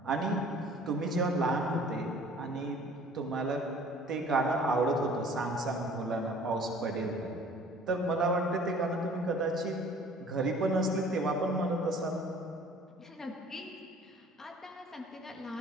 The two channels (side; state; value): both; normal; correlation 0.51